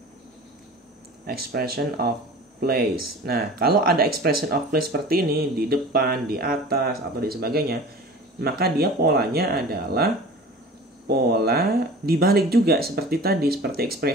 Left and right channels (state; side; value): normal; both; correlation 0.40